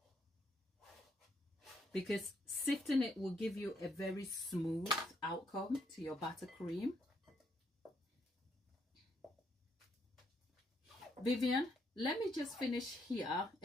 Because sifting it will give you a very smooth outcome to your buttercream. Vivian, let me just finish here,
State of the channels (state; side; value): normal; both; correlation 0.74